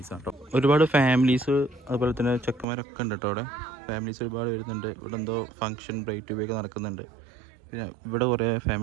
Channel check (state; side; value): drops out; left; at 2.7 s